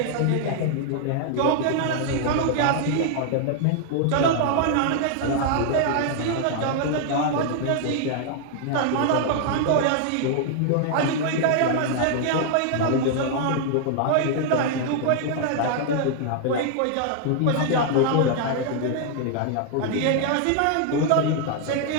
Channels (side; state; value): both; different; correlation -0.01